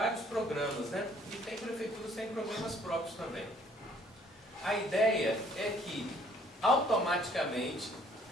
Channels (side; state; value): both; normal; correlation 0.60